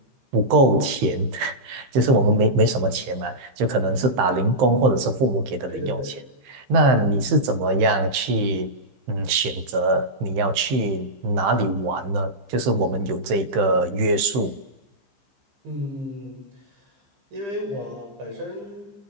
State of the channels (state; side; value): late; left; 15 ms